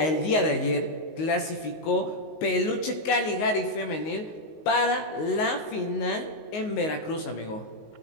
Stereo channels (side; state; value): right; late; 19 ms